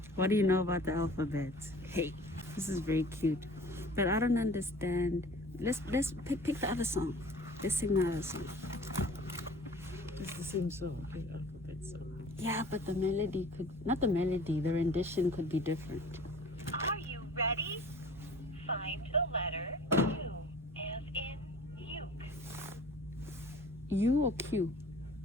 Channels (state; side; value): normal; both; correlation 0.46